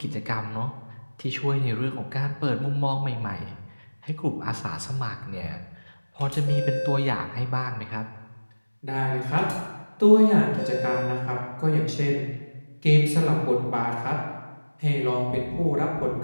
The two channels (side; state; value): both; inverted; correlation -1.00